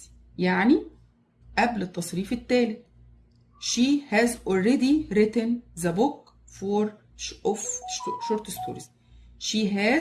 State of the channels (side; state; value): both; identical; correlation 1.00